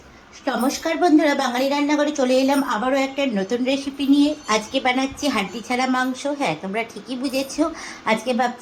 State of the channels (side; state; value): both; identical; correlation 1.00